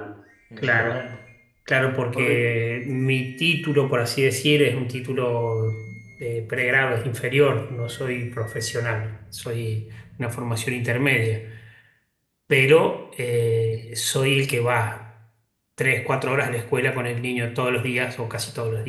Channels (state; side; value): identical; both; correlation 1.00